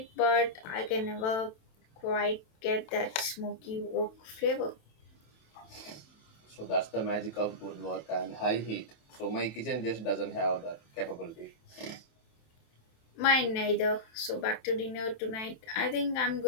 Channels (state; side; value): late; right; 27 ms